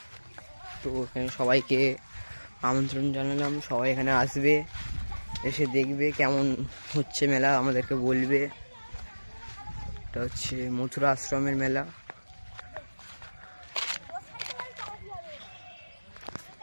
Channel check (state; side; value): inverted; both; correlation -1.00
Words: তো এখানে সবাইকে আমন্ত্রণ জানালাম, সবাই এখানে আসবে, এসে দেখবে কেমন হচ্ছে মেলা, আমাদেরকে বলবে। এটা হচ্ছে মথুরা আশ্রমের মেলা।